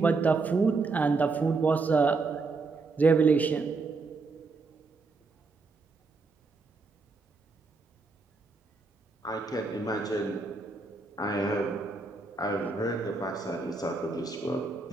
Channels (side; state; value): left; quieter; 3.9 dB